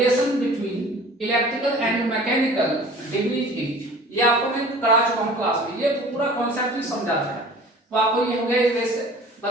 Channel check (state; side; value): normal; both; correlation 0.45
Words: between electrical and mechanical degrees is, ये आपको मैं करा चुका हूं क्लास में, ये पूरा कॉन्सेप्ट भी समझाता है। तो आपको ये हो गया एक